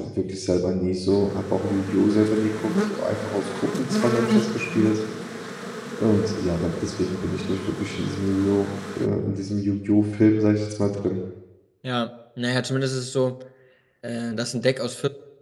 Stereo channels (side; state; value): both; identical; correlation 1.00